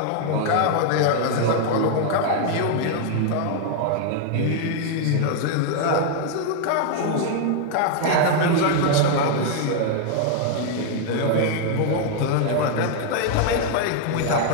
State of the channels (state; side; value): different; both; correlation 0.00